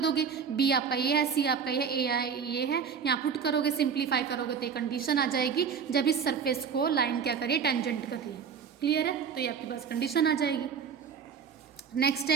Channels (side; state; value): left; quieter; 6.6 dB